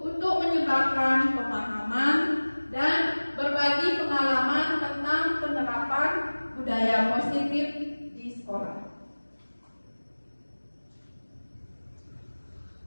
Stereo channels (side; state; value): both; inverted; correlation -1.00